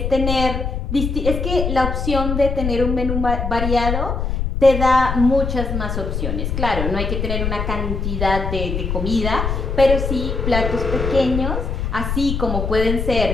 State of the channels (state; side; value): noise; left; rumble, 2 dB below the sound